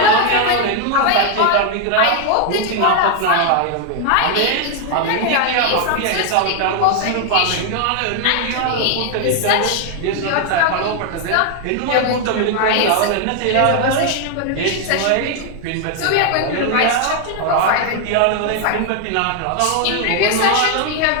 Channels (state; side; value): different; both; correlation 0.00